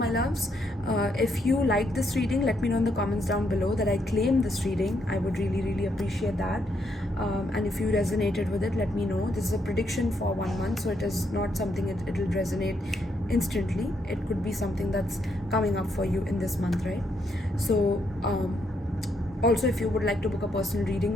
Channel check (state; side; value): normal; both; correlation 0.76